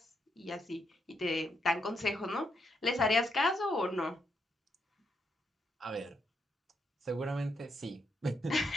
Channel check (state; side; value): normal; both; correlation 0.79